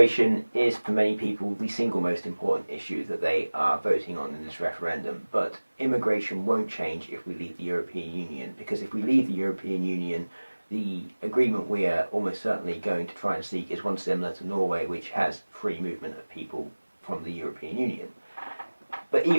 is for many people the single most important issue that they are voting on in this referendum, but immigration won't change if we leave the European Union, because if we leave the European Union, the agreement we are almost certainly going to try and seek is one similar to Norway, which has free movement of people from the European Union. But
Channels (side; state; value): both; inverted; correlation -1.00